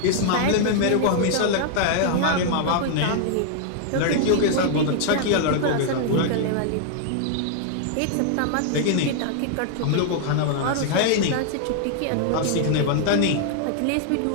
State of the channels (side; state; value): both; different; correlation -0.01